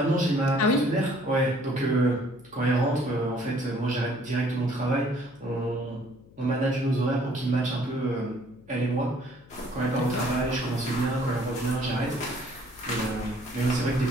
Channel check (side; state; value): left; noise; hum, 24 dB below the sound